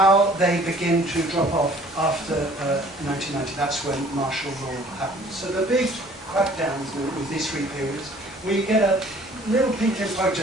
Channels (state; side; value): normal; both; correlation 0.54